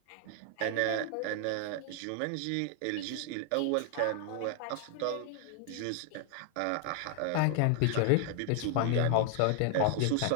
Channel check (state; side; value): different; both; correlation 0.00